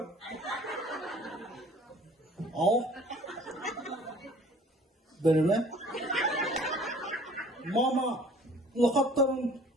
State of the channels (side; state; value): both; normal; correlation 0.52